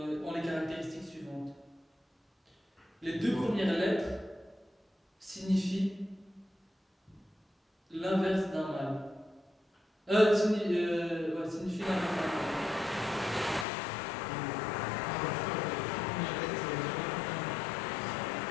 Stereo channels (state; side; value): drops out; right; at 13.7 s